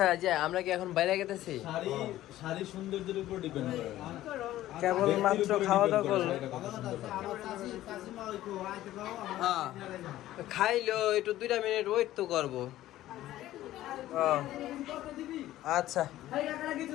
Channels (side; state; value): right; quieter; 14.4 dB